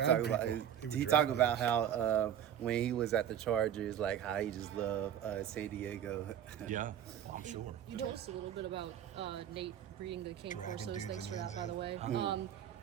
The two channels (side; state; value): left; quieter; 10.0 dB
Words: talked about how when he was at the Chargers, like, how he just loved San Diego. Yeah, well, I'm sure. You told us a little bit about Nate breeding the King Dragging Forces. dudes Thanks in for the that, by end the way. Mm-hmm.